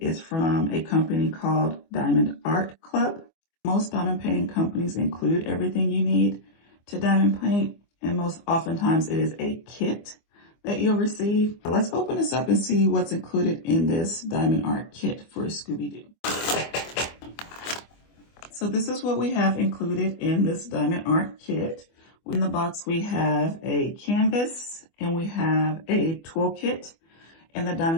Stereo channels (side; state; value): right; late; 24 ms